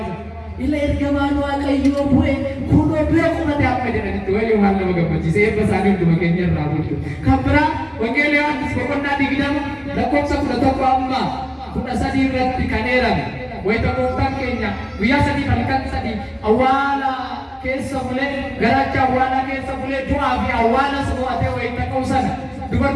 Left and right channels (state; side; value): identical; both; correlation 1.00